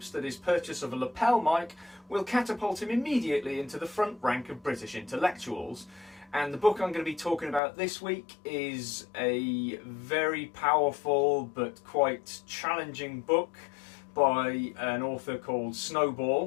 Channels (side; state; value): right; drops out; at 7.6 s